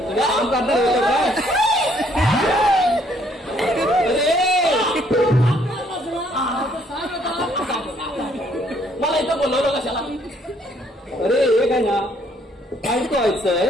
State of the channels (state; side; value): normal; both; correlation 0.66